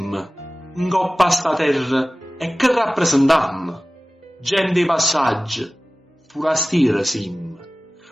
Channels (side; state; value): both; normal; correlation 0.97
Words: in coppa sta terra, e che rappresentiamo. Gente di passaggio, forastiera siamo.